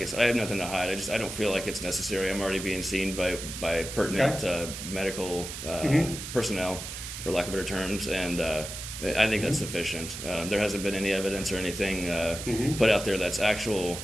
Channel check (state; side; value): noise; right; hiss, 8 dB below the sound